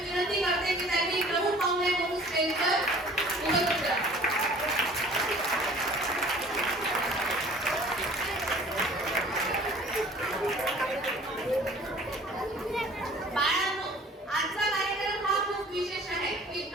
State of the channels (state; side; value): normal; both; correlation 0.49